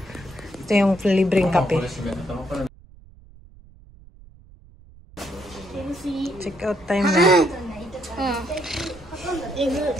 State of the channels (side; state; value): right; noise; rumble, 23 dB below the sound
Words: Ito yung libreng kape. Check out time na.